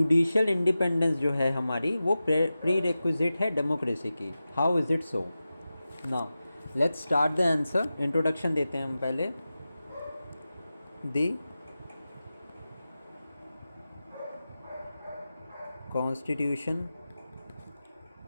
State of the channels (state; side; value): inverted; both; correlation -0.94